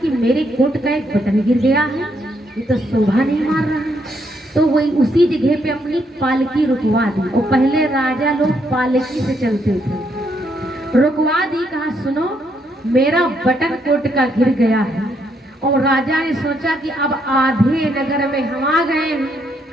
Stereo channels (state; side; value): normal; both; correlation 0.75